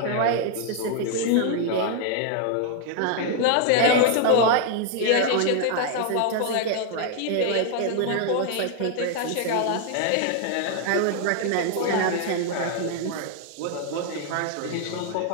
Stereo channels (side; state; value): both; different; correlation 0.00